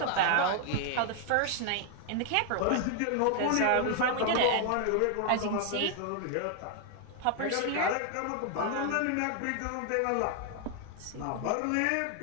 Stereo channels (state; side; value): different; both; correlation 0.00